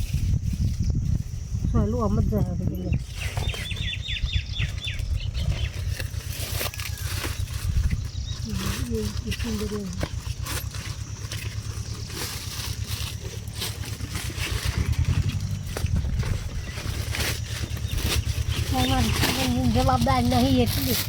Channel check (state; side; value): identical; both; correlation 1.00